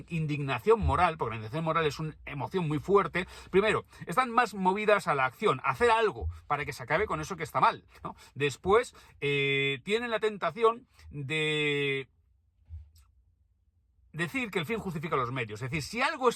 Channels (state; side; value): identical; both; correlation 1.00